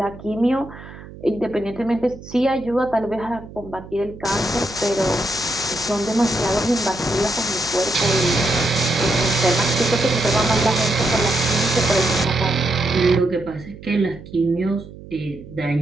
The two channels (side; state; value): right; noise; hum, 16 dB below the sound